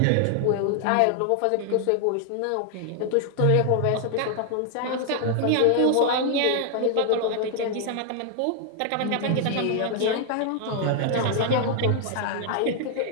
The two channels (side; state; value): both; different; correlation 0.00